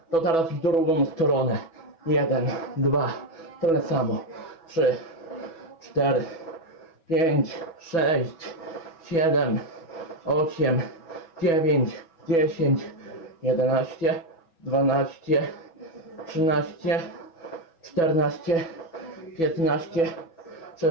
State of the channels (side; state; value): right; late; 6.1 ms